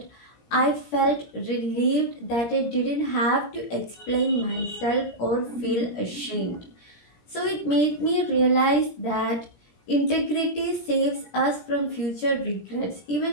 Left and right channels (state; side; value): late; right; 17 ms